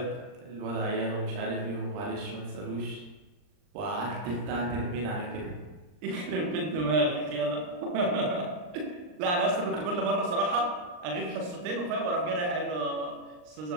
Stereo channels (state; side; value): late; left; 39 ms